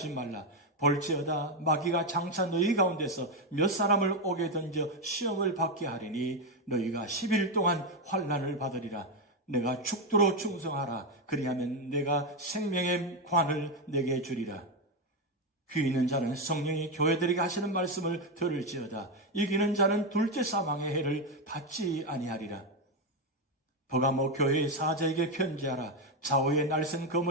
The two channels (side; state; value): both; normal; correlation 0.08